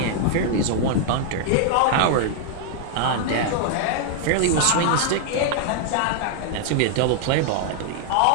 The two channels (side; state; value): both; different; correlation 0.00